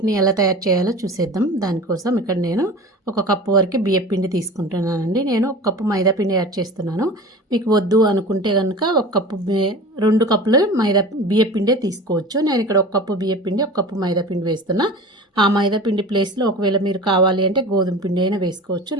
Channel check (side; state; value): both; normal; correlation 0.36